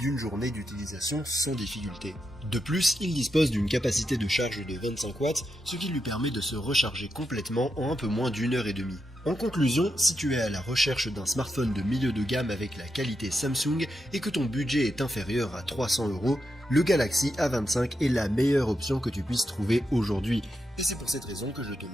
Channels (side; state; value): both; normal; correlation 0.85